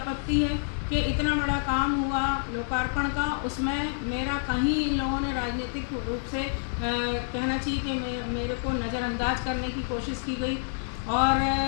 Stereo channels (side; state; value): right; silent; digital silence